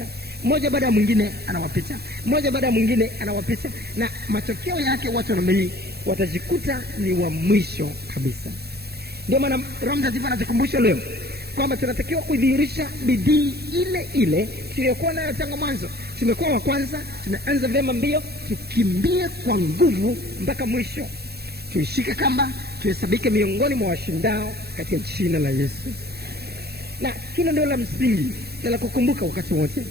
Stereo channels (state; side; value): late; left; 0.47 ms